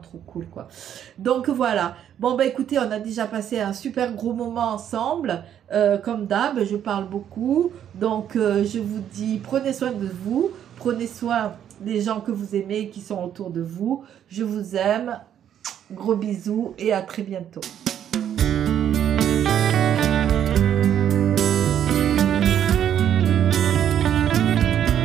cool, quoi. Donc voilà. Bon, écoutez, on a déjà passé un super gros moment ensemble. Comme d'hab, je parle beaucoup. Donc, je vous dis, prenez soin de vous. Prenez soin des gens que vous aimez, qui sont autour de vous. Je vous aime. Gros bisous et à très bientôt.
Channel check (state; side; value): quieter; left; 9.8 dB